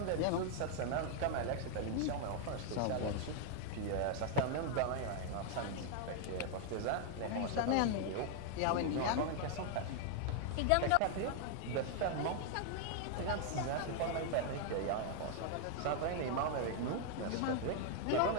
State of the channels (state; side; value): different; both; correlation 0.00